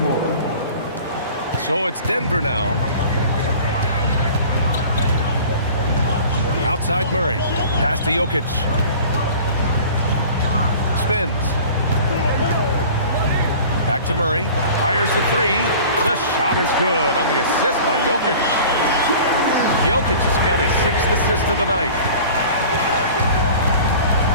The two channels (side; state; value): both; inverted; correlation -0.42